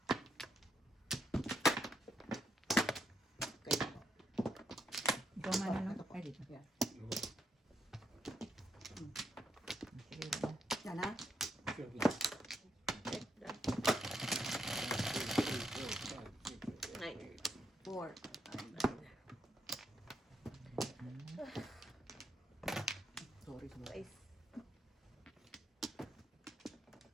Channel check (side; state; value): both; normal; correlation 0.79